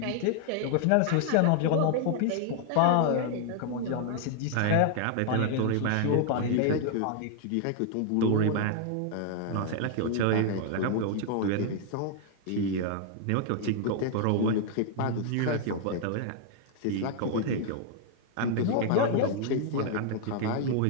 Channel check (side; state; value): both; different; correlation 0.00